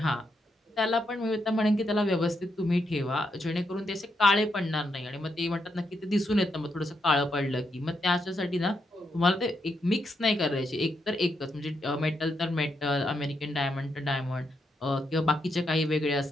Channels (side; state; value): both; normal; correlation 0.81